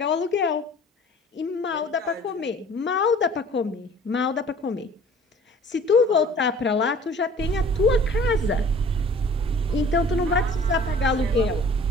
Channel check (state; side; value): normal; both; correlation 0.49